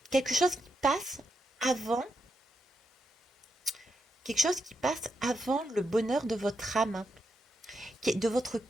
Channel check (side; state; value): both; normal; correlation 0.82